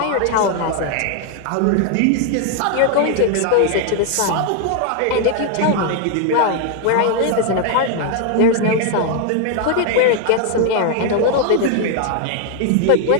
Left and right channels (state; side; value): different; both; correlation 0.00